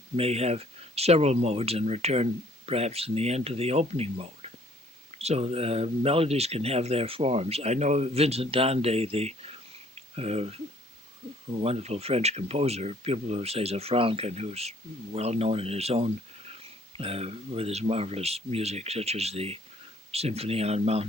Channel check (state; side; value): normal; both; correlation 0.59